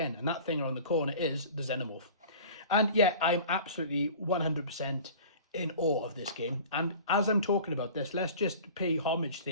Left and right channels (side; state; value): both; inverted; correlation -0.42